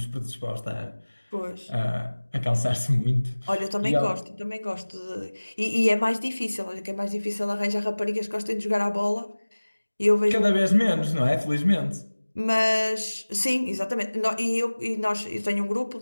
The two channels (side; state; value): both; inverted; correlation -1.00